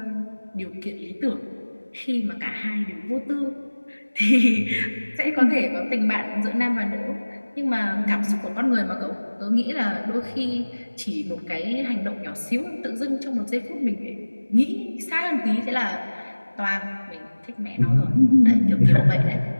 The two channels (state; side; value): inverted; both; correlation -1.00